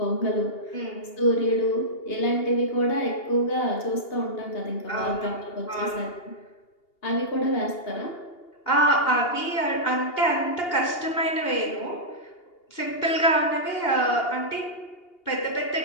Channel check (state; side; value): late; right; 2.8 ms